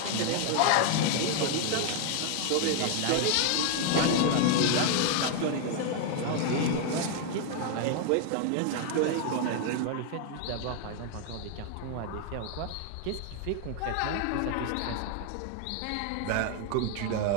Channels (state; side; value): different; both; correlation 0.00